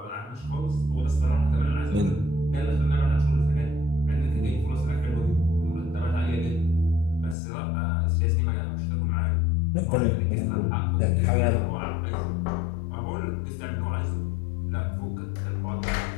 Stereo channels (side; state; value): right; drops out; at 7.4 s